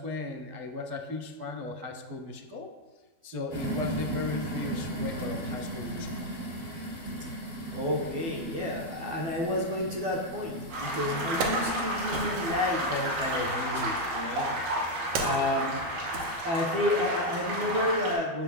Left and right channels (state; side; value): late; left; 12 ms